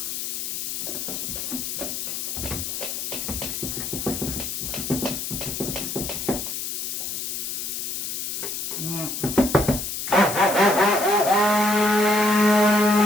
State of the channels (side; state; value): left; noise; hiss, 4 dB below the sound